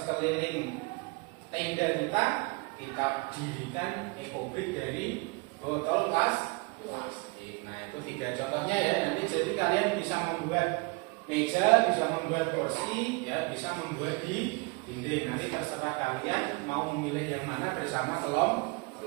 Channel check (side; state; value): left; quieter; 27.8 dB